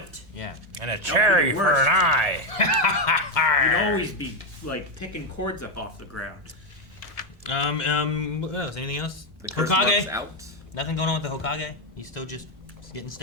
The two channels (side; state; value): both; normal; correlation 0.06